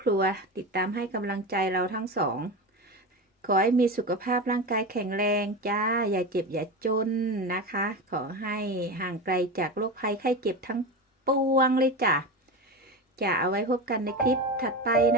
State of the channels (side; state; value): both; normal; correlation 0.22